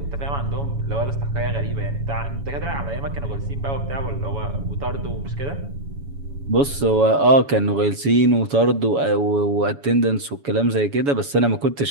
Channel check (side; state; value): left; late; 7.1 ms